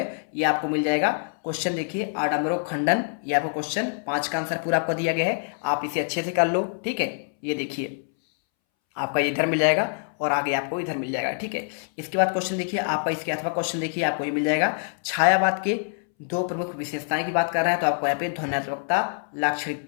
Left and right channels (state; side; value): silent; right; 61 dB below the other